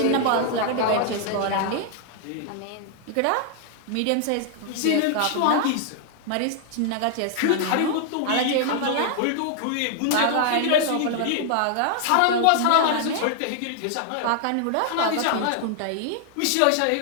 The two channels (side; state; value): both; different; correlation 0.00